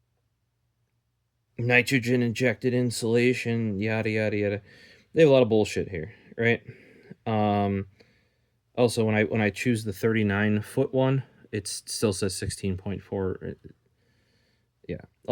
Nitrogen injected insulation, yada yada yada. They have a lot of bullshit here, right? Also, when I choose the 39-foot one, it still says 16.4. Yeah,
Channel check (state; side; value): identical; both; correlation 1.00